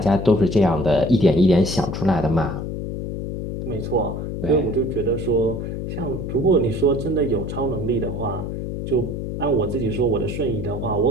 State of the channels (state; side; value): noise; left; hum, 5 dB below the sound